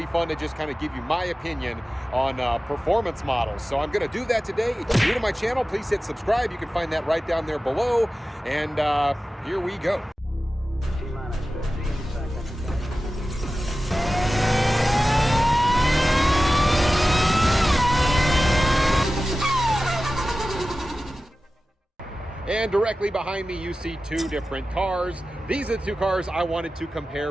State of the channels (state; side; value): normal; both; correlation 0.95